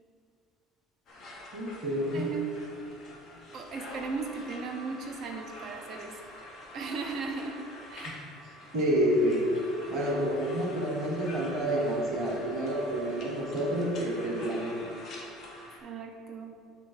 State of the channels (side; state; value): both; normal; correlation 0.44